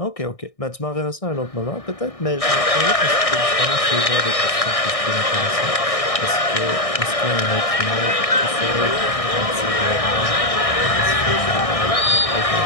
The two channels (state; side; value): late; right; 1.6 ms